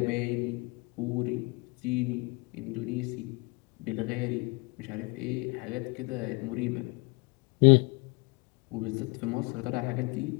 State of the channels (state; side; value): quieter; right; 29.2 dB